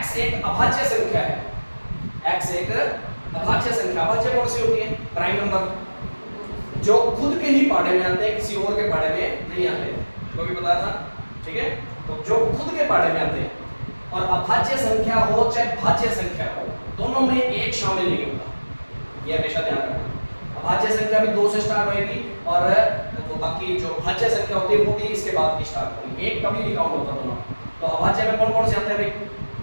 एक अभाज्य संख्या है, x एक अभाज्य संख्या। अभाज्य कौन सी होती है, प्राइम नंबर जो खुद के ही पाड़े में आते हैं, किसी और के पाड़े में नहीं आते, तो भी बताया था, ठीक है? तो जो खुद के पाड़े में आते हैं, और अभाज्य संख्या हो चाहे भाज्य संख्या हो, दोनों में एक शामिल नहीं होता, ये हमेशा ध्यान रखना। अभाज्य संख्या भी 2 से स्टार्ट होएगी, और तो बाकी जो भाज्य संख्या होती है वो भी इसके बाद की स्टार्ट होगी, एक कभी नहीं काउंट होता दोनों। तो अभाज्य में कौन कौन से आते हैं भाई,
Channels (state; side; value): inverted; both; correlation -1.00